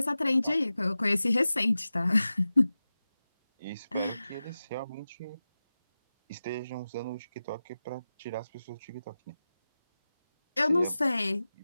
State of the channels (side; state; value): both; inverted; correlation -0.95